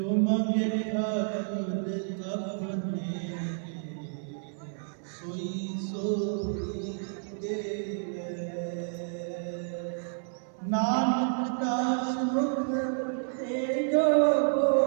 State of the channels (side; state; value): left; silent; 58 dB below the other